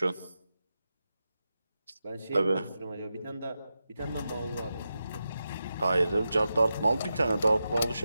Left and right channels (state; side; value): inverted; both; correlation -0.90